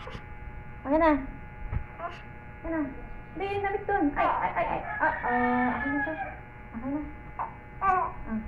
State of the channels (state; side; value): identical; both; correlation 1.00